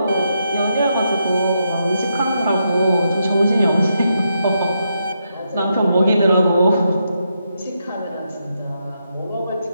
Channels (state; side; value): inverted; both; correlation -0.82